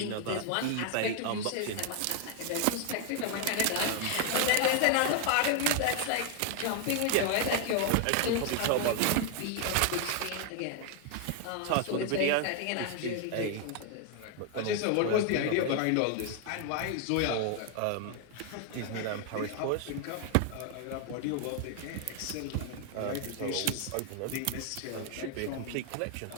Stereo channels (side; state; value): both; different; correlation 0.00